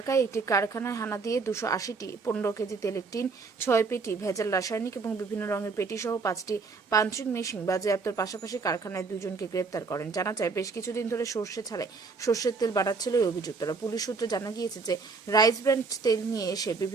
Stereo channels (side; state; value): left; quieter; 4.5 dB